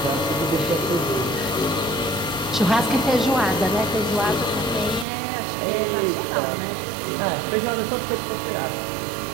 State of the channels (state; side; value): drops out; left; at 5.1 s